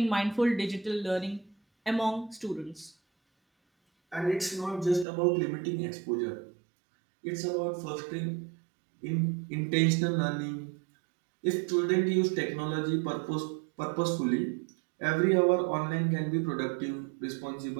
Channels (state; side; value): drops out; left; at 5.1 s